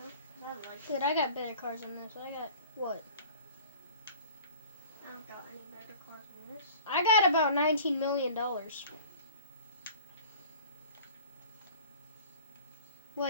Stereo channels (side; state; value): both; inverted; correlation -0.45